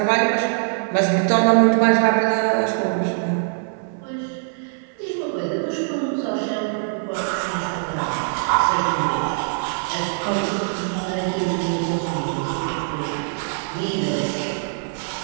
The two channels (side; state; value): left; silent; 63 dB below the other